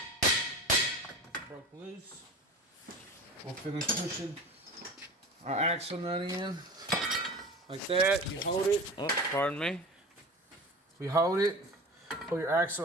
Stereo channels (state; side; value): normal; both; correlation 0.34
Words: Broke loose. We'll finish pushing our axle nut in. Like that. You hold it. Oh, pardon me. We hold it. Pull your